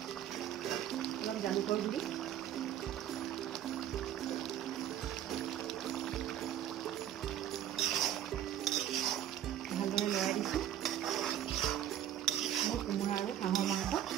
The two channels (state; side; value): quieter; left; 11.2 dB